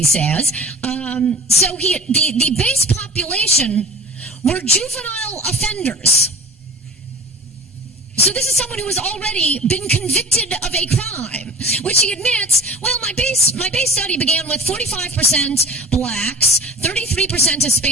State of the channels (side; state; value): both; normal; correlation 0.38